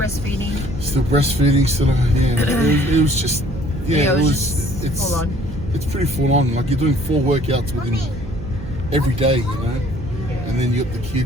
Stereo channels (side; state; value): right; noise; hum, 11 dB below the sound